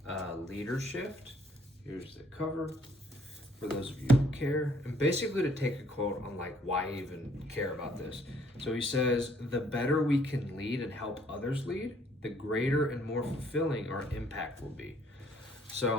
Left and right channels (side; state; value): both; normal; correlation 0.63